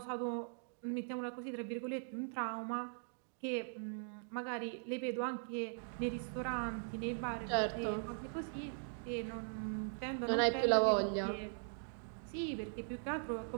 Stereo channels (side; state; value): left; silent; digital silence